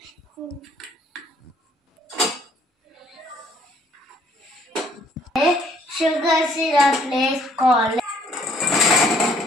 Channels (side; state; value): both; normal; correlation 0.63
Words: షుగర్ సిరప్ వేసుకోవాలి.